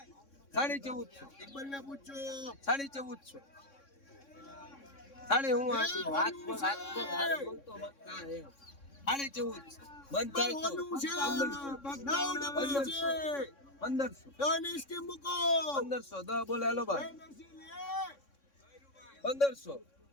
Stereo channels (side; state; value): right; late; 3.6 ms